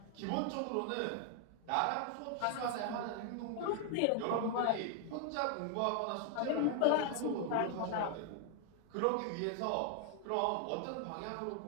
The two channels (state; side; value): different; both; correlation 0.00